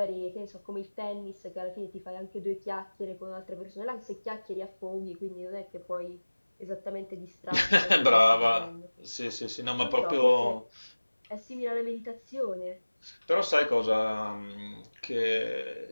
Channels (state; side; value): inverted; both; correlation -1.00